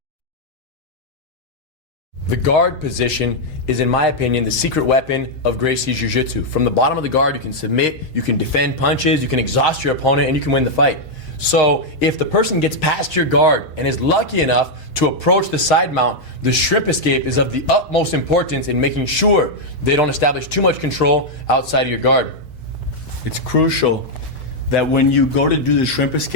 The guard position is, in my opinion, the secret weapon of Gracies Jiu-Jitsu. From the bottom of the guard, you can submit, you can defend punches, you can exhaust your opponent, and you can win the fight. So if the person gets past your guard and is lucky enough to approach the side mount, the shrimp escape is of the utmost importance in making sure they don't establish too much control outside of your guard. It's crucial that when you go to do the shrimp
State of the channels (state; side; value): normal; both; correlation -0.02